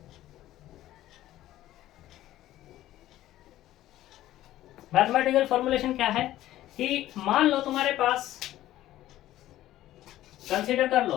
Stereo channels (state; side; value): quieter; right; 14.2 dB